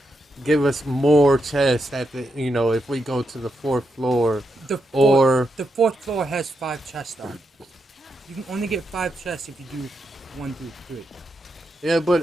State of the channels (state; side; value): normal; both; correlation 0.83